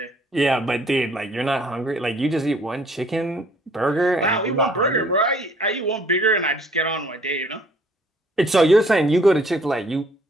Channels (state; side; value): normal; both; correlation 0.59